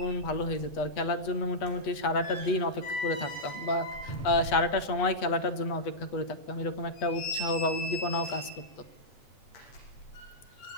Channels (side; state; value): right; late; 8.3 ms